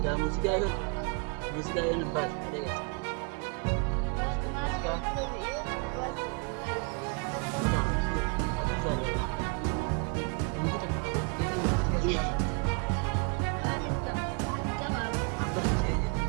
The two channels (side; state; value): left; quieter; 35.0 dB